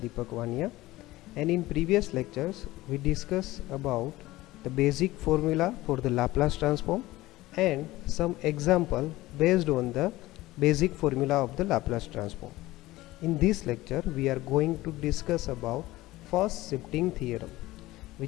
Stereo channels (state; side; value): quieter; right; 18.0 dB